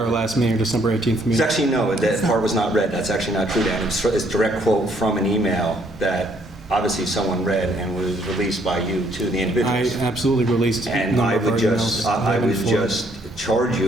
last meeting, December 18th It's meeting. actually, no, that part was not read. That's actually not true, Dan. It's a direct quote from an email that obviously someone read and was released by you to the I individuals. absolutely released a And number I of our would emails. I would for- just charge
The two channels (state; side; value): normal; both; correlation 0.67